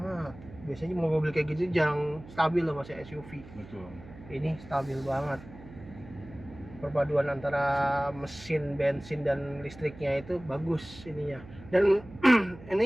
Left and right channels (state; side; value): noise; right; hum, 18 dB below the sound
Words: Biasanya mobil kayak gitu jarang stabil loh Mas ya, SUV. Betul. Ini stabil banget. Perpaduan antara mesin bensin dan listriknya itu bagus ininya. Dan